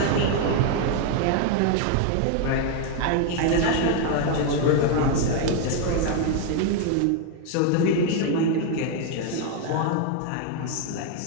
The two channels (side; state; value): both; different; correlation 0.01